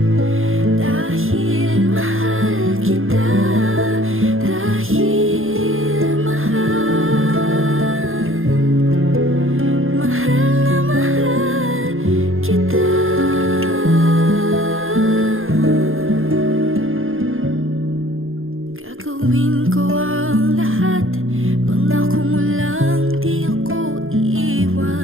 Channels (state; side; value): late; left; 0.60 ms